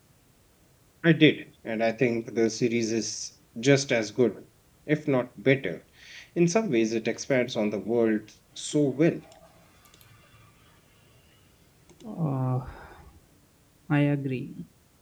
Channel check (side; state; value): both; identical; correlation 1.00